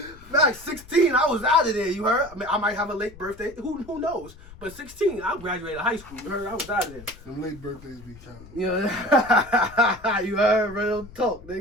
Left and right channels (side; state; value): left; noise; rumble, 20 dB below the sound